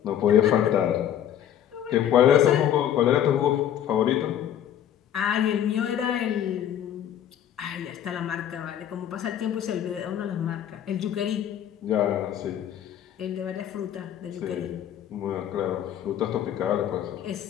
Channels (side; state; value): right; quieter; 10.4 dB